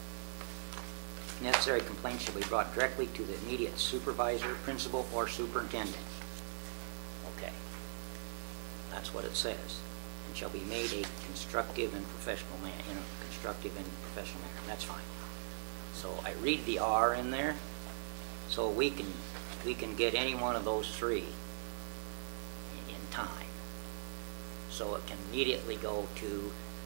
Necessary complaints shall be brought directly to the immediate supervisor, principal, or superintendent. Okay. That's what it says. And shall be made a constructive and professional manner, constructive and professional manner. That's fine. So I read the R in there, so we can get any one of those three in time. So it can immediately go to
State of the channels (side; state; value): left; silent; 51 dB below the other